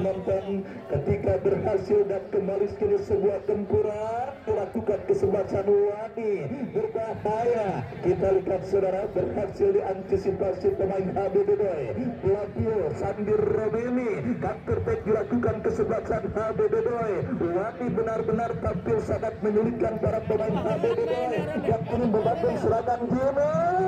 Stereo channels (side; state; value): both; identical; correlation 1.00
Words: ketika berhasil dan kembali sekali sebuah gempuran dilakukan kesebelasan Luani berbahaya. Kita lihat saudara berhasil diantisipasi pemain HBDBOY. Pelapio Sandir Robeni counter attack dilakukan kesebelasan HBDBOY. Luani benar-benar tampil sangat menyulitkan para pemain HBDBOY yang kini membangun serangan Jimmy.